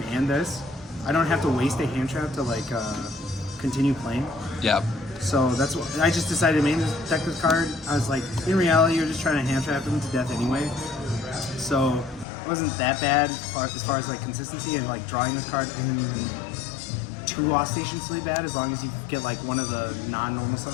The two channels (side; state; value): right; drops out; at 12.2 s